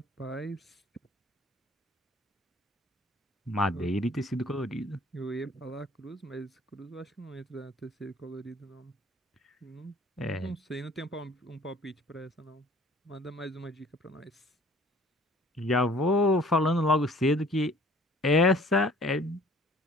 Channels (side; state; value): both; normal; correlation 0.52